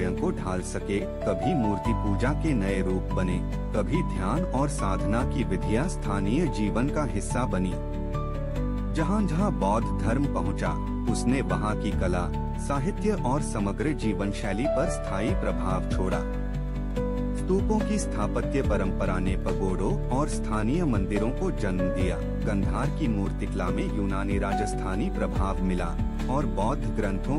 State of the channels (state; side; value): identical; both; correlation 1.00